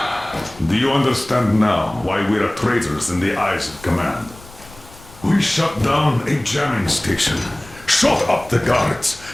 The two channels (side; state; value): left; noise; rumble, 22 dB below the sound